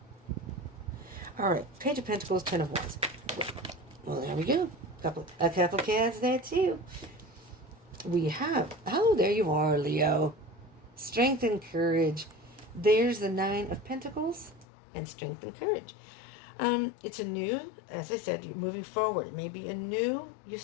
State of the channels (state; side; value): drops out; right; at 14.7 s